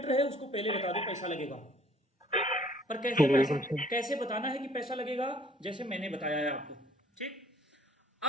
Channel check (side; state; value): both; normal; correlation 0.58